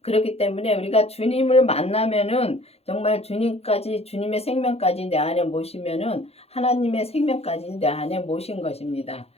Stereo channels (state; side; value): late; right; 0.29 ms